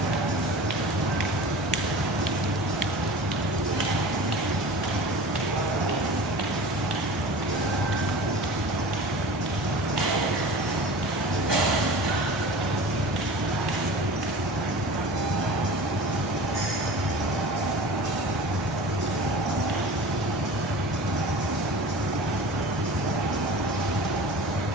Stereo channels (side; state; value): both; normal; correlation 0.37